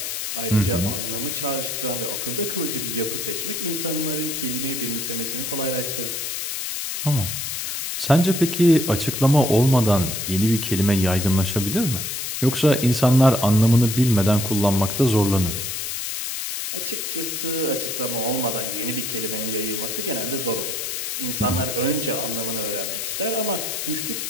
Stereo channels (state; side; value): noise; left; hiss, 4 dB below the sound